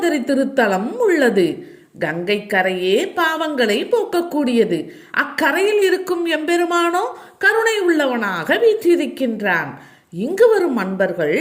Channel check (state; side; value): identical; both; correlation 1.00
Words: திருத்தலம் உள்ளது. கங்கை கரையே பாவங்களை போக்கக்கூடியது. அக்கரையில் இருக்கும் எம்பெருமானோ கருணை உள்ளவனாக வீற்றிருக்கின்றான். இங்கு வரும் அன்பர்கள்